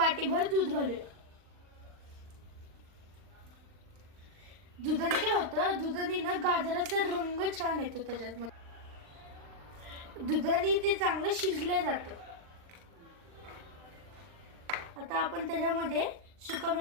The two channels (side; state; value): left; late; 39 ms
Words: दूध घालूया। दुधाने काय होतं, दुधाने ना गाजराचा रंग छान येतो त्याच्यात, दुधाने ते चांगलं शिजलं जातं। आता आपण त्याच्यामध्ये